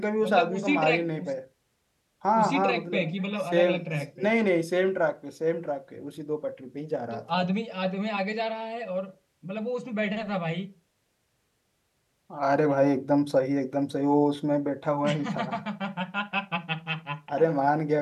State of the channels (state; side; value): identical; both; correlation 1.00